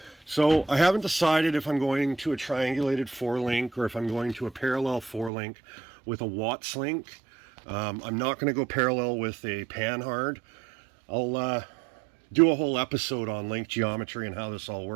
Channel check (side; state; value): left; drops out; at 5.3 s